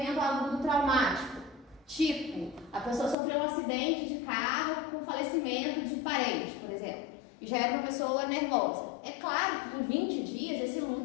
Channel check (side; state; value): right; drops out; at 3.2 s